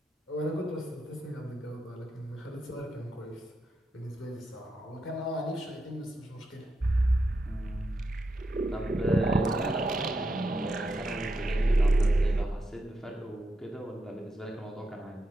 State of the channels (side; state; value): both; normal; correlation 0.85